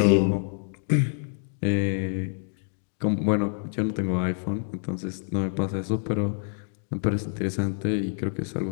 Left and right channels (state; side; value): silent; right; digital silence